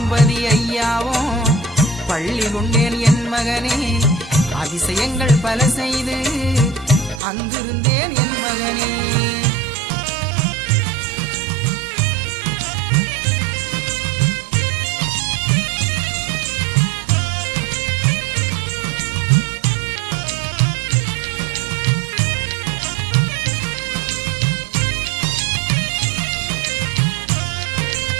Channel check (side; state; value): left; drops out; at 7.2 s